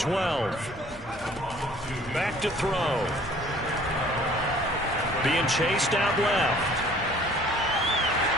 Back to throw. Being chased out left.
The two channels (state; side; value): normal; both; correlation 0.53